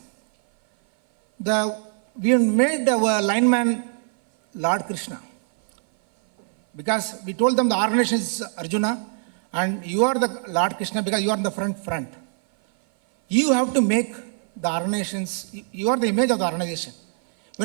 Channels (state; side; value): silent; left; 57 dB below the other